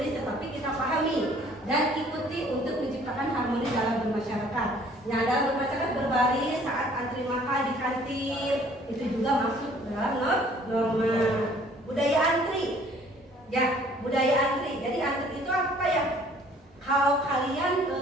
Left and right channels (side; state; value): both; normal; correlation 0.56